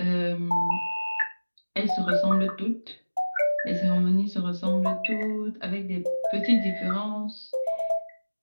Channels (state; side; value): inverted; both; correlation -1.00